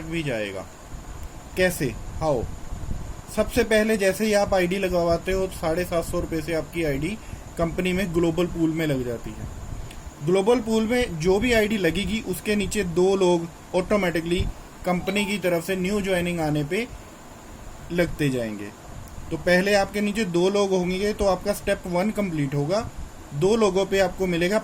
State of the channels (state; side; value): identical; both; correlation 1.00